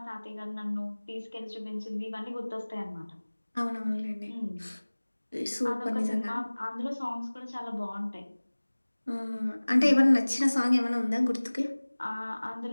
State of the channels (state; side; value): inverted; both; correlation -1.00